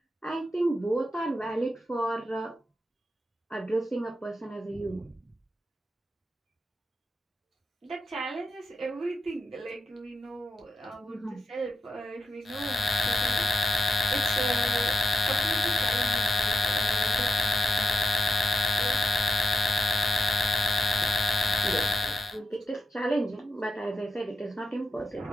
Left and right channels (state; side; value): normal; both; correlation 0.86